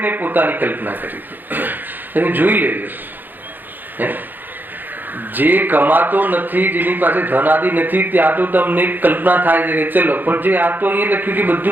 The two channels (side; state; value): left; late; 0.089 ms